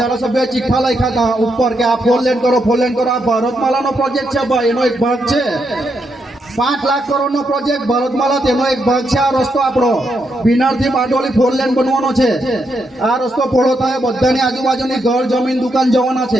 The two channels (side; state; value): both; normal; correlation 0.80